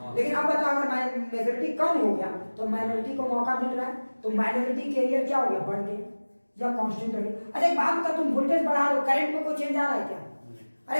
लेकिन अब बताओ अगर मेजॉरिटी कम हो गया तो माइनॉरिटी को मौका मिल रहा है, तो माइनॉरिटी कैरियर क्या हो गया? बढ़ गया या कांस्टेंट रह गया? अच्छा एक बात बता, तुम वोल्टेज बढ़ा रहे हो, करंट में कोई चेंज आ रहा है क्या?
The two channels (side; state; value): both; inverted; correlation -1.00